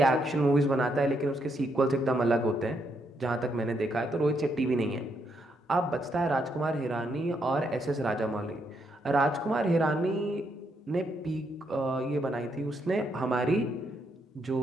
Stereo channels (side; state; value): both; normal; correlation 0.77